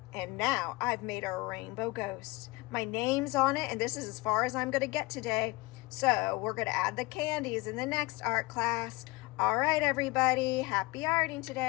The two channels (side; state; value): right; quieter; 22.7 dB